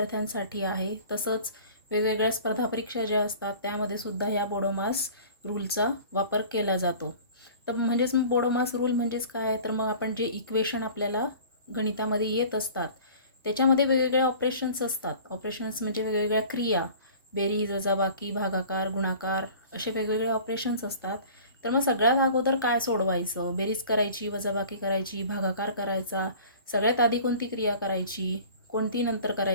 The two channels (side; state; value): both; inverted; correlation -0.44